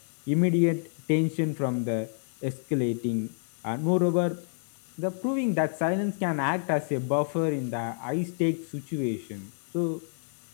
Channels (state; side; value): silent; right; digital silence